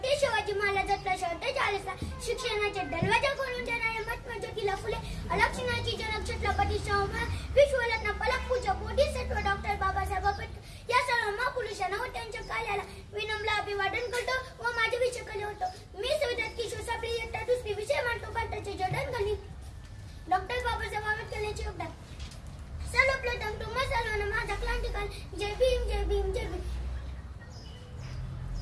Shivaji महाराजांचा shirt चाळीसला, शिक्षणाचे दरवाजा खोलून देणारे महात्मा ज्योतिबा फुले, अलक्षणाची जनक छत्रपती शाहू महाराज, विश्वरत्न पलकपूजा बोधिसत्व डॉक्टर बाबासाहेब आंबेडकर या सर्व महापुरुषांना व त्यांच्या कार्याला विनम्र अभिवादन करतो व माझे विषय केले होतो. मी संविधान किशोर सापळे इयत्ता दुसरी विषय मांडतो भारताचे जडणघडण डॉक्टर बाबासाहेब आंबेडकर यांचे योगदान. सर्वप्रथम तुम्हा सर्वांना माझा क्रांतिकारी जय भीम जय भीम जय भीम.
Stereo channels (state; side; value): identical; both; correlation 1.00